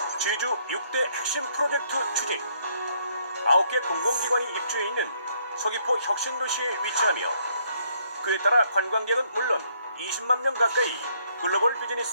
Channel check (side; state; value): both; inverted; correlation -0.68